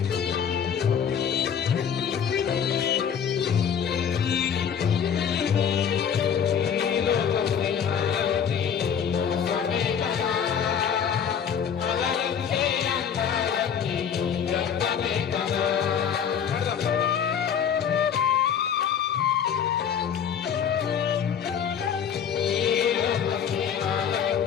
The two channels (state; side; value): quieter; right; 7.9 dB